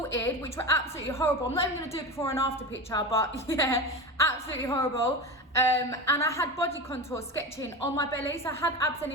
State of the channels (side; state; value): both; normal; correlation 0.25